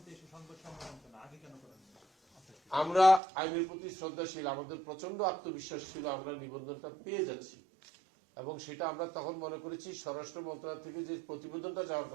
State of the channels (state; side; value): drops out; left; at 3.2 s